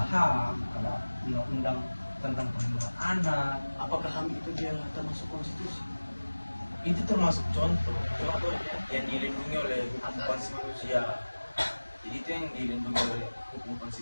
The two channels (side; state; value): both; inverted; correlation -1.00